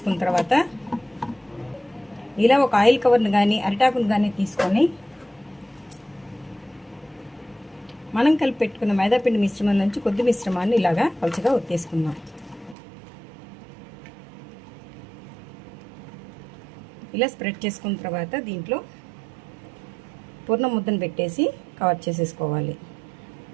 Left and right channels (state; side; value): drops out; left; at 12.8 s